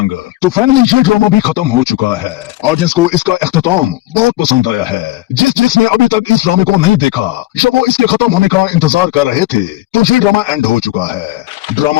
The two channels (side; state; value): right; quieter; 16.7 dB